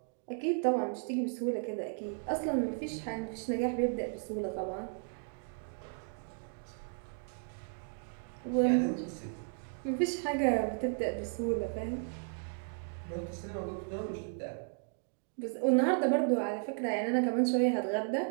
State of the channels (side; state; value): left; silent; 55 dB below the other